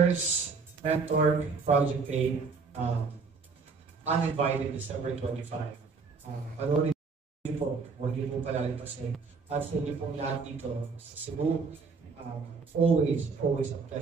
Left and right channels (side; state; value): left; quieter; 4.8 dB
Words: Mentor, Project 8, uninvited December 25. Panoorin niyo po, huwag niyo po palalipasin. At sa inyo pong lahat dito sa Cebu, always a